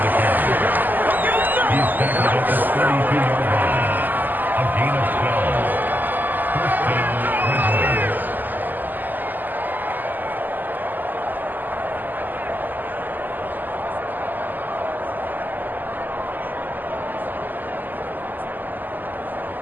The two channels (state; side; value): late; left; 0.086 ms